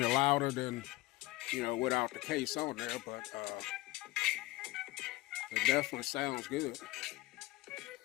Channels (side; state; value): right; quieter; 19.6 dB